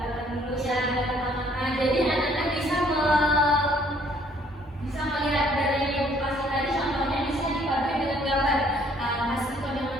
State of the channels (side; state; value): both; normal; correlation 0.62